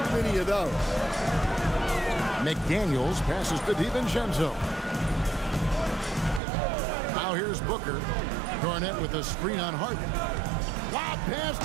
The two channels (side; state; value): left; drops out; at 6.4 s